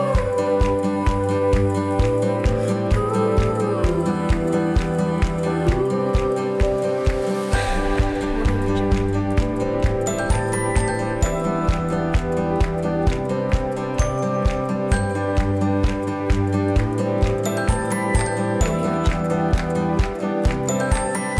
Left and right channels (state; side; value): identical; both; correlation 1.00